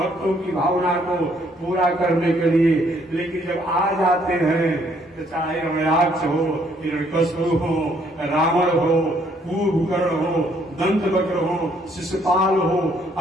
की भावना को पूरा करने के लिए, लेकिन जब आ जाते हैं तो चाहे रमयाक्ष हो, हिरण्यकश्यप हो, रावण हो, कुंभकर्ण हो, दंतवक्र हो, शिशुपाल हो,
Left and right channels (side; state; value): both; normal; correlation 0.67